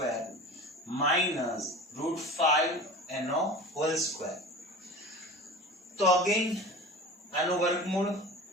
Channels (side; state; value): both; normal; correlation 0.36